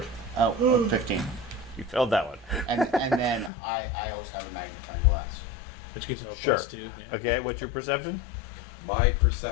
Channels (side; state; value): right; drops out; at 3.5 s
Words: Oh, 15. You failed that one. And then I also have a magnifying glass. Which gives me a Sure. plus 2. Yeah. Okay, what's your perception? My